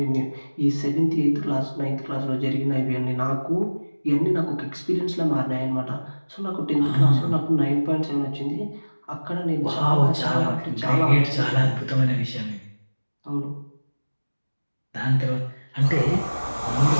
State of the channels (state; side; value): inverted; both; correlation -1.00